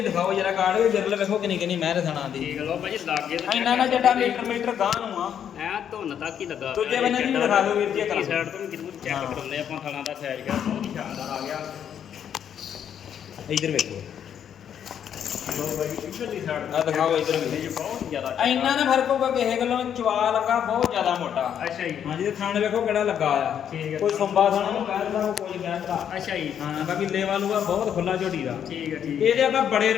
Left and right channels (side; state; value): right; quieter; 8.9 dB